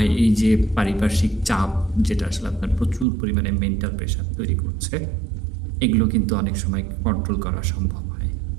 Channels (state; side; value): drops out; left; at 3.1 s